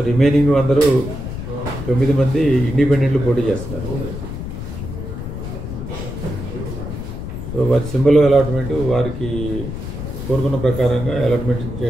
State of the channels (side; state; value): left; noise; rumble, 7 dB below the sound